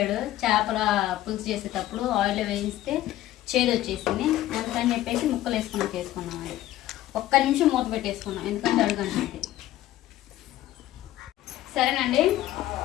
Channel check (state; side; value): quieter; right; 14.4 dB